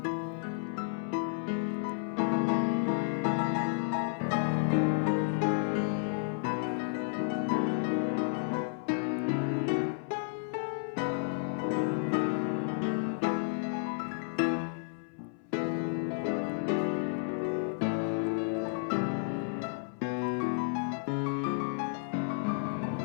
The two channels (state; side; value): silent; right; 56 dB below the other